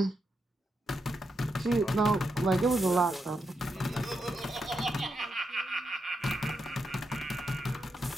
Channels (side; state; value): both; normal; correlation 0.84